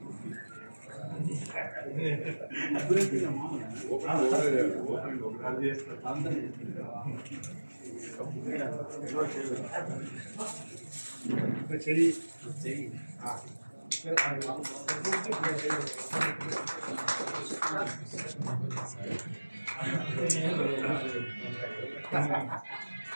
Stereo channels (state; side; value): inverted; both; correlation -1.00